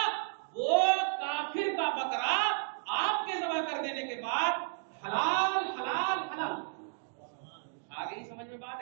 وہ کافر کا بکرا آپ کے ذبح کر دینے کے بعد حلال حلال حلال. آگے ہی سمجھ میں بات،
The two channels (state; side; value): silent; left; digital silence